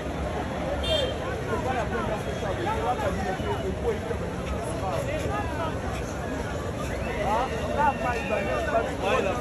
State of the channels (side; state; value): both; identical; correlation 1.00